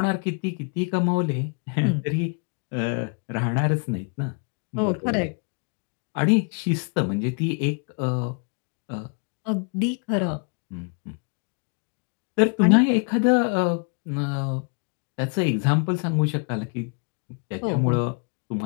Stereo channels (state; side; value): quieter; right; 36.2 dB